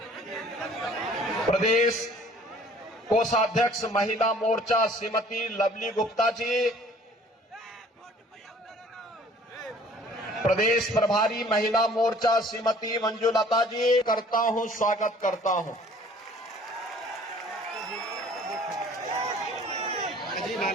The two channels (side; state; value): both; normal; correlation 0.53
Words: प्रदेश कोषाध्यक्ष महिला मोर्चा श्रीमती लवली गुप्ता जी, प्रदेश प्रभारी महिला मोर्चा श्रीमती मंजुलता जी, करता हूं, स्वागत करता हूं।